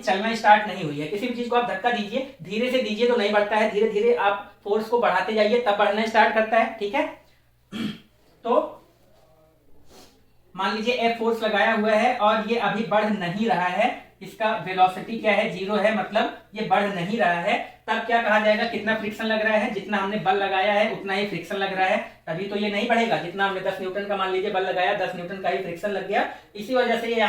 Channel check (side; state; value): both; identical; correlation 1.00